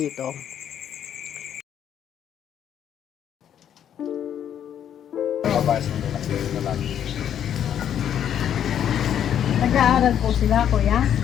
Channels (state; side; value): quieter; right; 9.6 dB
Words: Nag-aaral po sila, kuya?